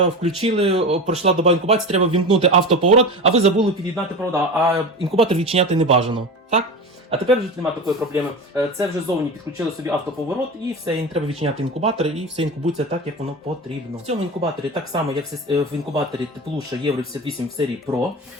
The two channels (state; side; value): normal; both; correlation 0.27